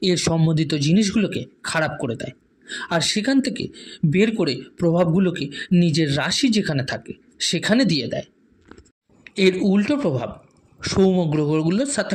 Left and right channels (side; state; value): both; identical; correlation 1.00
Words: এর সম্বন্ধিত জিনিসগুলোকে খারাপ করে দেয়, আর সেখান থেকে বের করে প্রভাবগুলোকে নিজের রাশি যেখানে থাকে সেখানে দিয়ে দেয়। এর উল্টো প্রভাব সৌম গ্রহগুলোর সাথে